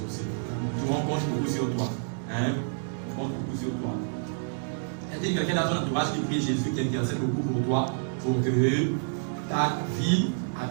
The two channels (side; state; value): left; silent; digital silence